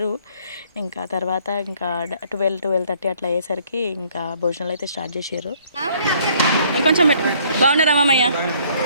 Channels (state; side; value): inverted; both; correlation -0.61